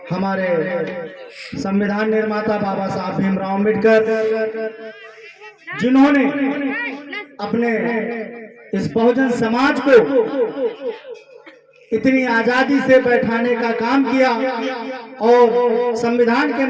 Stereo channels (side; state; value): both; identical; correlation 1.00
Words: हमारे संविधान निर्माता बाबा साहब भीमराव अम्बेडकर, जिन्होंने अपने इस बहुजन समाज को इतनी आजादी से बैठाने का काम किया और संविधान के